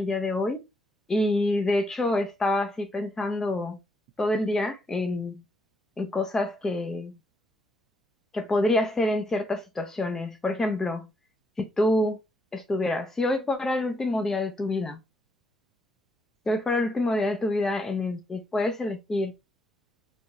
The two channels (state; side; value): normal; both; correlation 0.78